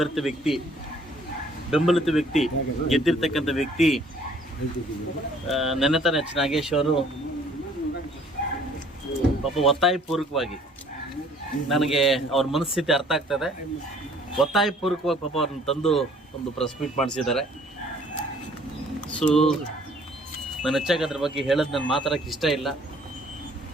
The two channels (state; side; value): normal; both; correlation 0.57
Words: ವ್ಯಕ್ತಿ, ಬೆಂಬಲಿತ ವ್ಯಕ್ತಿ, ಗೆದ್ದಿರ್ತಕ್ಕಂಥ ವ್ಯಕ್ತಿ ನೆನೆತನ ಎಚ್ ನಾಗೇಶ್ ಅವರು ಪಾಪ ಒತ್ತಾಯಪೂರ್ವಕವಾಗಿ, ನನಗೆ ಅವ್ರ ಮನಸ್ಥಿತಿ ಅರ್ಥ ಆಗ್ತದೆ, ಒತ್ತಾಯಪೂರ್ವಕವಾಗಿ ಪಾಪ ಅವ್ರನ್ನ ತಂದು ಒಂದು ಪ್ರೆಸ್ ಮೀಟ್ ಮಾಡಿಸಿದ್ದಾರೆ. ಸೊ ನಾನು ಹೆಚ್ಚಾಗಿ ಅದ್ರ ಬಗ್ಗೆ ಹೇಳೋದು ನಾನು ಮಾತಾಡೋಕ್ಕೆ ಇಷ್ಟ ಇಲ್ಲ,